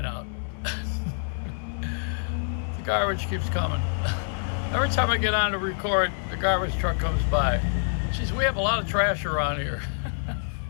out. The garbage keeps coming. Every time I get on to record, the garbage truck comes by. Geez, we have a lot of trash around here.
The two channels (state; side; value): silent; right; 60 dB below the other